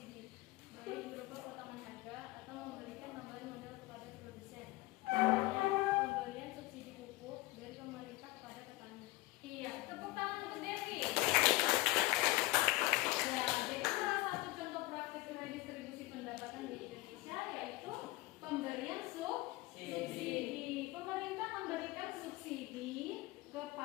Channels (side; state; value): right; quieter; 20.5 dB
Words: baik berupa potongan harga atau memberikan tambahan modal kepada produsen. Pemberian subsidi pupuk dari pemerintah kepada petani. Iya, tepuk tangan untuk Devi. Ya, jadi salah satu contoh praktik redistribusi pendapatan di Indonesia yaitu pemberian subsidi. Pemerintah memberikan subsidi